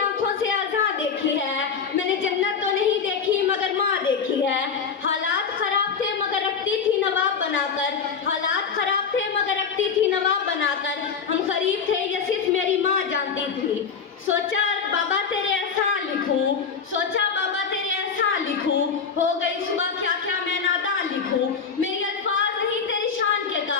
से आज़ाद देखी है। मैंने जन्नत तो नहीं देखी मगर माँ देखी है। हालात खराब थे मगर रखती थी नवाब बनाकर, हालात खराब थे मगर रखती थी नवाब बनाकर। हम गरीब थे ये सिर्फ मेरी माँ जानती थी। सोचा बाबा तेरे एहसान लिख सोचा बाबा तेरे एहसान लिखूं, हो गई सुबह क्या क्या मैं नादान लिखूं। मेरे अल्फाज नहीं तेरी शान के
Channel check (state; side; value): quieter; right; 6.1 dB